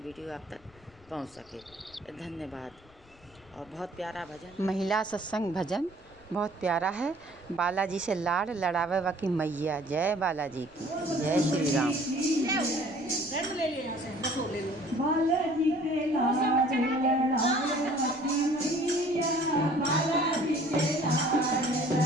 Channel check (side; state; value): left; noise; rumble, 27 dB below the sound